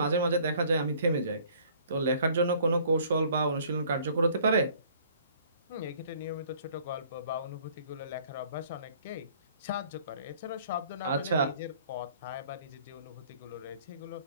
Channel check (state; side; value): inverted; both; correlation -0.56